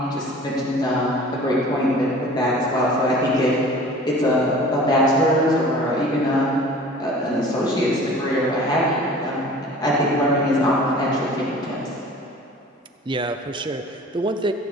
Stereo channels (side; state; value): both; normal; correlation 0.44